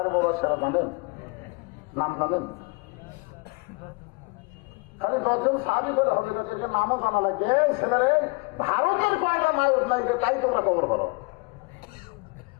মুবাশশিরা জানেন? নাম জানেন? খালি 10 জন সাহাবী বলে হবে, তাদেরকে নামও জানা লাগে। ছেলেরে ভারতের কয়টা নায়ক নাই, তাই তোমরা খবর করো।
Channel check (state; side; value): quieter; right; 29.4 dB